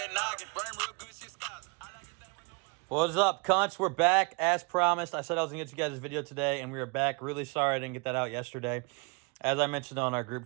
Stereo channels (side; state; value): left; quieter; 30.7 dB